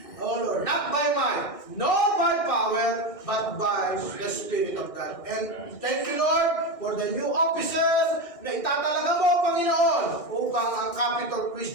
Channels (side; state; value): right; late; 1.6 ms